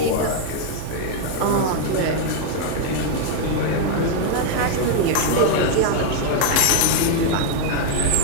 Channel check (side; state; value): both; different; correlation 0.00